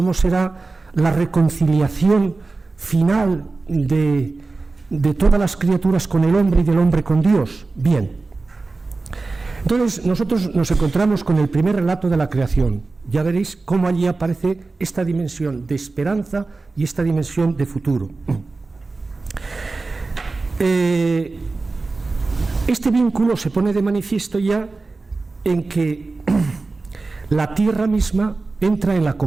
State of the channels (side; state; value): left; quieter; 3.7 dB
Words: será la reconciliación final de todas las criaturas con el hombre y del hombre con Dios. Bien, entonces nosotros nos encontramos con el primer relato de la creación. Ya veréis cómo allí aparece esta dimensión de esperanza y esta dimensión de futuro. Este vínculo se pone de manifiesto ya en que la tierra misma entra en la